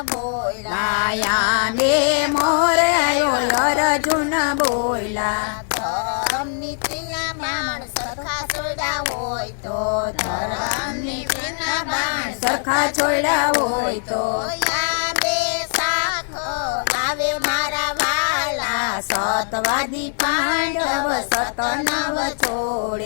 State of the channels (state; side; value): silent; right; digital silence